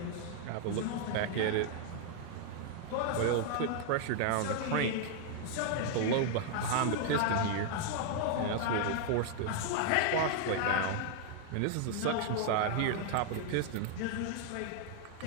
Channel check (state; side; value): different; both; correlation 0.00